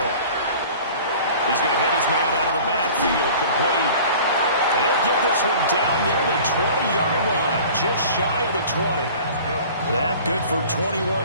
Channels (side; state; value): both; inverted; correlation -0.44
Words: He's going to hit his man out of the backfield. Complete. And he'll get this one down near the 20-yard line. Just shy of the 20. That good for